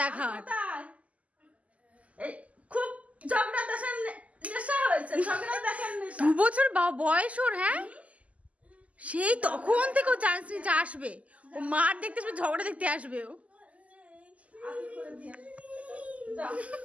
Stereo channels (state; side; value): late; left; 0.069 ms